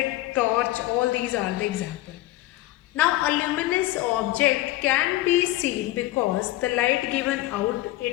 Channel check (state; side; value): quieter; right; 16.9 dB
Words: torch, all these are the examples. Now a luminous object can be seen because the light given out,